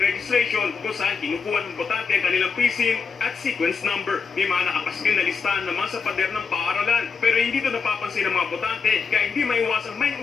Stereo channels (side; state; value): right; quieter; 5.4 dB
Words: registration kung saan kinukuha ng botante ang kanilang precinct at sequence number. May mga nakapaskil na listahan naman sa pader ng paaralan pero hindi ito napapansin ng mga botante kaya hindi maiwasang may